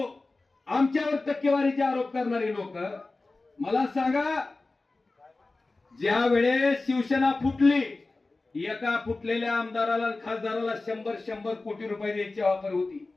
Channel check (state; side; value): quieter; right; 3.4 dB